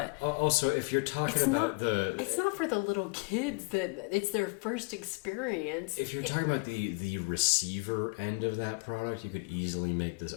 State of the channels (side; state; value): right; quieter; 32.6 dB